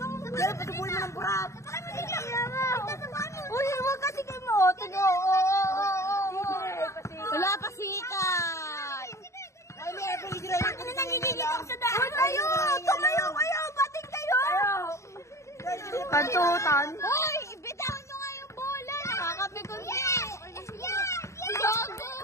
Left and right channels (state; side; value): late; right; 0.14 ms